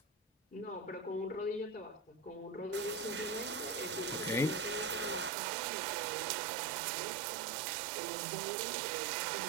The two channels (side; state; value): left; drops out; at 5.3 s